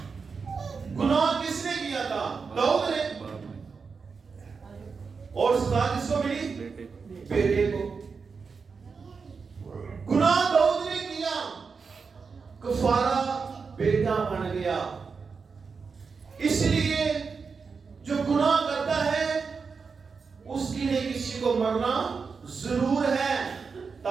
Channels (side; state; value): left; quieter; 5.2 dB